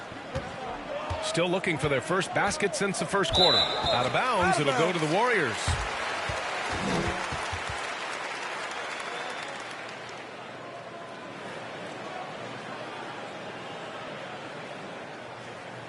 Still looking for their first basket since the first quarter. Out of bounds, it'll go to the Warriors.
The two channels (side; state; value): both; identical; correlation 1.00